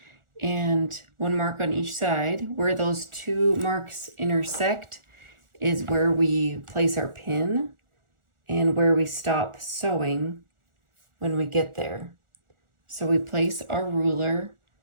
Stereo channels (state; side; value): late; left; 1.4 ms